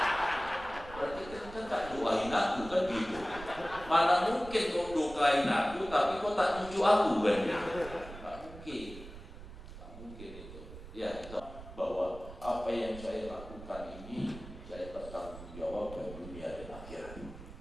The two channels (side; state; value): right; noise; rumble, 14 dB below the sound